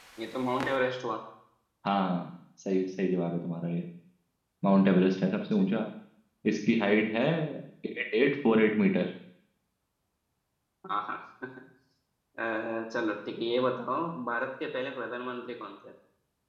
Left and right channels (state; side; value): identical; both; correlation 1.00